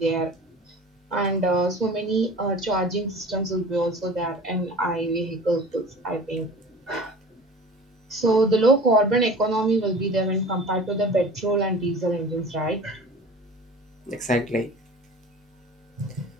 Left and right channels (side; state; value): both; normal; correlation 0.41